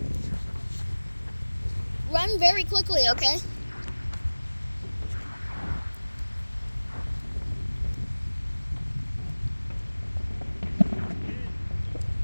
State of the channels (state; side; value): inverted; both; correlation -1.00